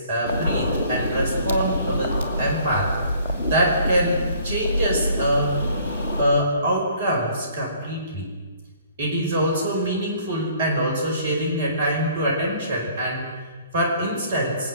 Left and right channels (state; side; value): inverted; both; correlation -0.58